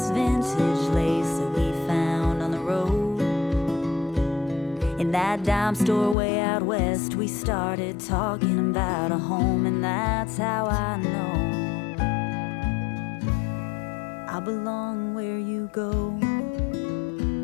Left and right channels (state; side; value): drops out; right; at 6.2 s